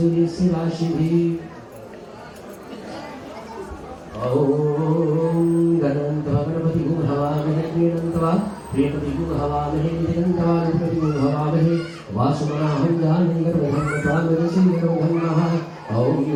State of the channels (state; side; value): identical; both; correlation 1.00